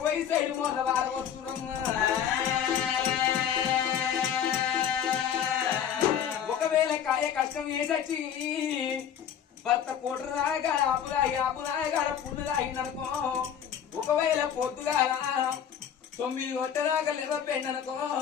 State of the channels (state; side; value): quieter; right; 8.9 dB